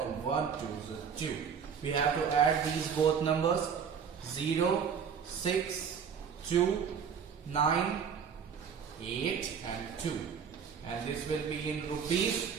and 1 2s are 2. We have to add these both numbers. 0, 6, 2, 9, 8 and 2, and this will be in rupees.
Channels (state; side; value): quieter; left; 7.0 dB